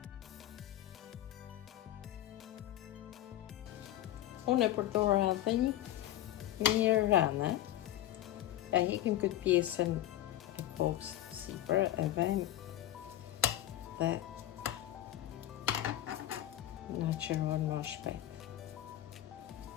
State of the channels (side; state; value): right; quieter; 13.5 dB